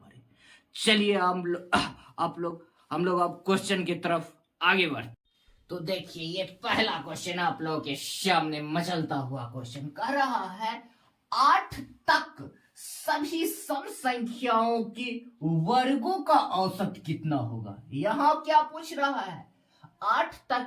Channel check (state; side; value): identical; both; correlation 1.00